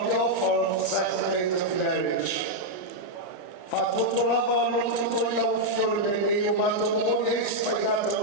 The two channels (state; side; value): late; right; 34 ms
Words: the author of the sacrament of marriage.